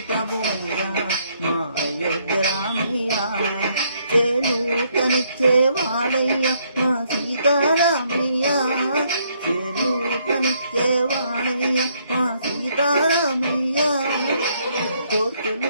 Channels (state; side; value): inverted; both; correlation -0.70